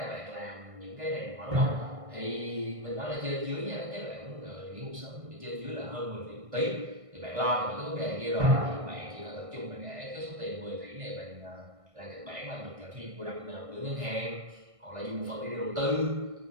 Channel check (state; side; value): late; left; 1.6 ms